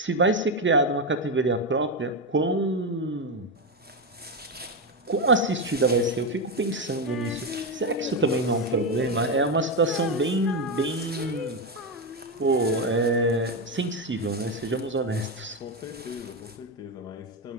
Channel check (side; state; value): both; normal; correlation 0.10